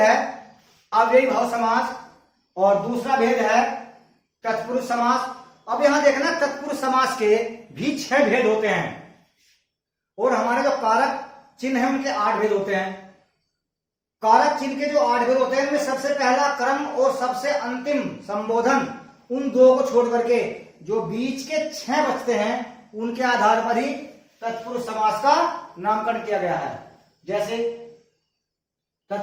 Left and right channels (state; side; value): identical; both; correlation 1.00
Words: अव्ययी भाव समास और दूसरा भेद है तत्पुरुष समास। अब यहां देखना, तत्पुरुष समास के भी 6 भेद होते हैं और हमारे जो कारक चिन्ह है उनके 8 भेद होते हैं। कारक चिन्ह के जो 8 भेद होते हैं उनमें सबसे पहला क्रम और सबसे अंतिम संबोधन, उन दो को छोड़ करके जो बीच के 6 बचते हैं उनके आधार पर ही तत्पुरुष समास का नामकरण किया गया है। जैसे